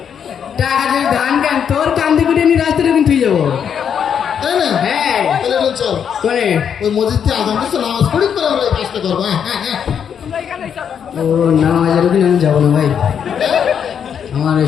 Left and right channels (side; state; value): right; quieter; 7.9 dB